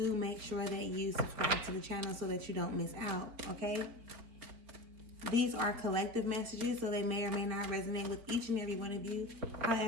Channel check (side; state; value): left; late; 4.7 ms